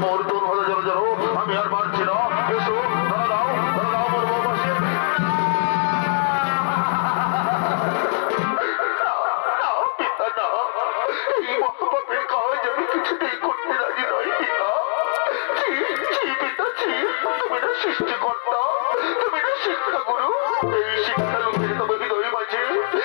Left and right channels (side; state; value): right; silent; digital silence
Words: মোর তোর হলো জড়ো জড়ো, আমি আর পারছি না। এসো ধরা দাও মোর বউবাসী। এই মহাপাপের কাজ আমি কিছুতেই করতে রাজি নই পিতা। তুমি না সৃষ্টিকর্তা, তুমি না শিক্ষাগুরু। এই শিক্ষা লোকের তবে হৃদয় মাঝে,